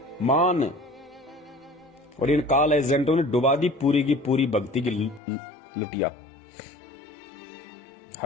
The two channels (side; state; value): right; drops out; at 5.2 s